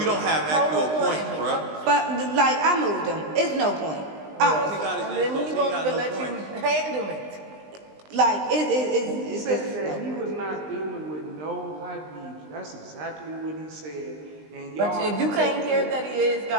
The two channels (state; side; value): late; left; 20 ms